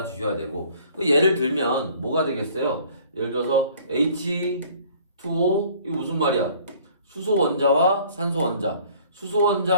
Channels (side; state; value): both; inverted; correlation -0.54